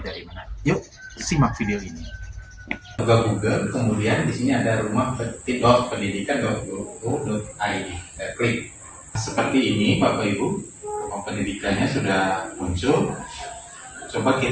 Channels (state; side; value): identical; both; correlation 1.00